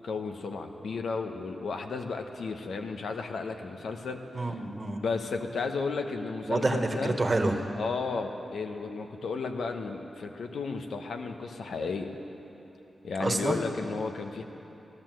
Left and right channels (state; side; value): normal; both; correlation 0.87